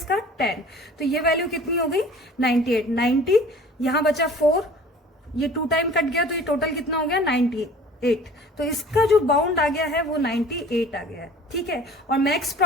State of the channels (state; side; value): normal; both; correlation 0.46